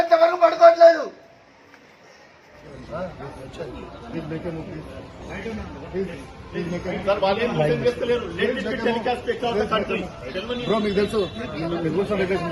వరకు పడుకోవట్లేదు. బ్రో మీకు తెలుసు, రూల్స్ అండ్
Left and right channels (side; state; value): both; identical; correlation 1.00